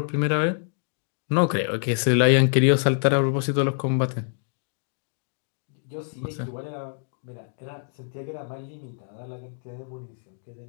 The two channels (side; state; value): right; silent; digital silence